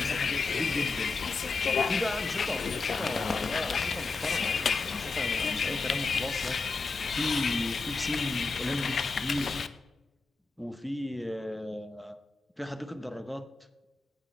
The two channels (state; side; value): quieter; right; 4.0 dB